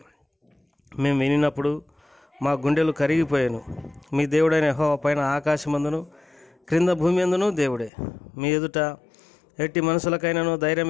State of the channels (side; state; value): right; drops out; at 7.9 s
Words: మేము వినినప్పుడు మా గుండెలు కరిగిపోయాను. మీ దేవుడైన యెహోవా పైన ఆకాశమందును క్రింద భూమి అందును దేవుడే. మీ ఎదుట ఎట్టి మనుషులకైనాను